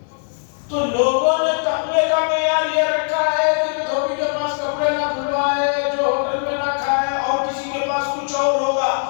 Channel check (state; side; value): silent; right; 57 dB below the other